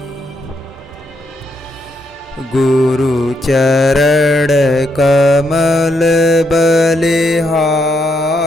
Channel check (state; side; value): normal; both; correlation 0.78